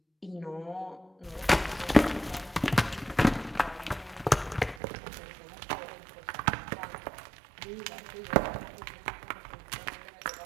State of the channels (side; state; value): left; drops out; at 4.8 s